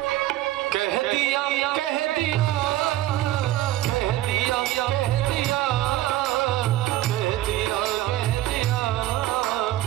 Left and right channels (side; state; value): left; quieter; 15.0 dB